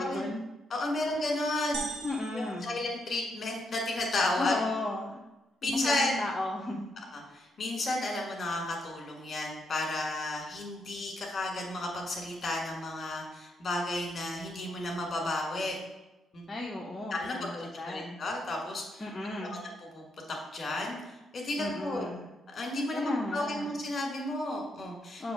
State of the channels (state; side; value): normal; both; correlation 0.79